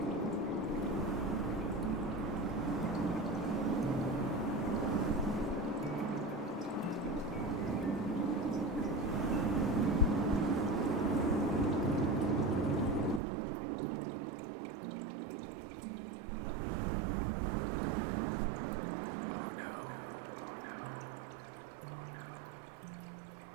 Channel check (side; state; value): left; drops out; at 13.2 s